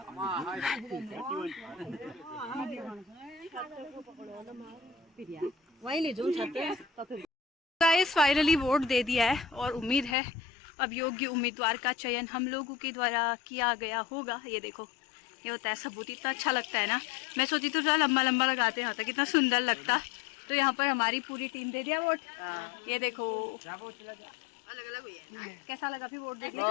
गाइस फाइनली वोट दे दिया है और उम्मीद है अब योग्य उम्मीदवार का चयन हम लोगों के द्वारा किया गया होगा। ये देखो, ये होता है सबूत। इतना अच्छा लगता है ना। मैं सोची तो थोड़ा लंबा लंबा लगाते हैं, कितना सुंदर लगता। तो यहाँ पर हमारी पूरी टीम दे दिया वोट। ये देखो अलग अलग हुई है। कैसा लगा फिर वोट देके?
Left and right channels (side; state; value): right; drops out; at 10.2 s